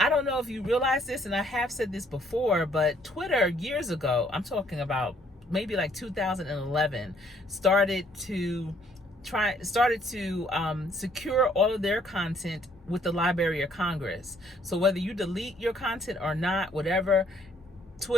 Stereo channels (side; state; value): both; normal; correlation 0.65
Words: don't know if you realize this, and I have said this before, but Twitter years ago, I'm talking about maybe like 2011, started to secure all of their content with the Library of Congress. So whether you delete your content or not, whatever,